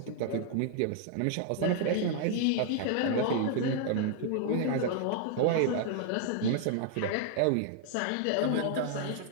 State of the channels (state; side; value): different; both; correlation 0.00